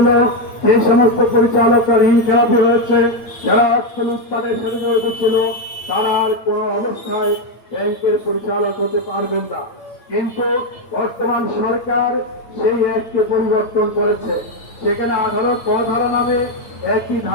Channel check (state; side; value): late; right; 8.9 ms